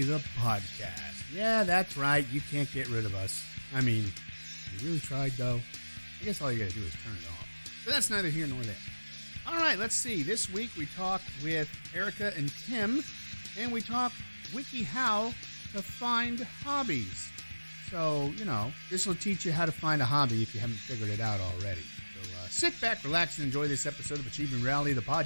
the podcast. Yeah, that's right, you can't get rid of us. I mean, you really tried though. I guess all you gotta do is turn it off. But that's neither here nor there. Alright, let's see. This week we talk with Erica and Tim, and we talk WikiHow to find hobbies. So, this will teach you how to find a hobby if you haven't figured it out already. So sit back, relax, and enjoy this episode of Achieving Reality, the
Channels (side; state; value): both; inverted; correlation -1.00